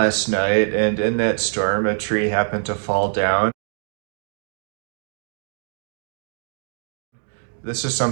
night, and in that storm, a tree happened to fall down. This is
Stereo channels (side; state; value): left; silent; digital silence